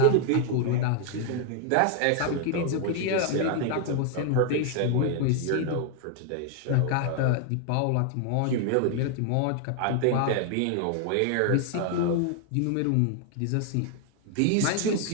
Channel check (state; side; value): different; both; correlation 0.00